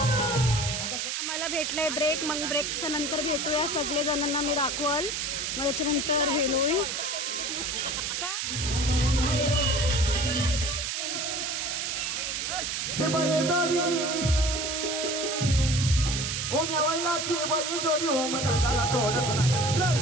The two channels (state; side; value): noise; right; hiss, 2 dB below the sound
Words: आम्हाला भेटलंय ब्रेक, मग ब्रेकच्या नंतर भेटूया सगळे जणांना मी दाखवल, मग त्याच्यानंतर हे होईल का ओम या वैलाची बैल जोडी ओम दादाला तोडत नाही जय